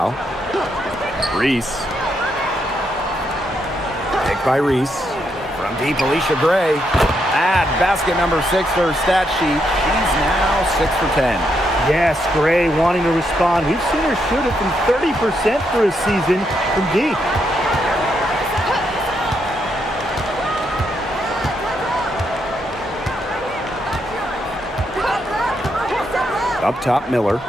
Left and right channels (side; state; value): both; normal; correlation 0.79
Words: Reese. Pick by Reese. From deep, Alicia Gray. Add basket number 6 to her stat sheet. She's now 6 for 10. Yes, Gray wanting to respond. We've seen her shoot it from 30% for a season from deep. Up top, Miller.